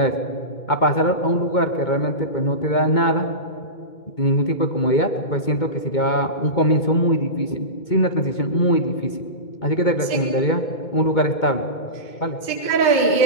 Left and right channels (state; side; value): late; right; 2.2 ms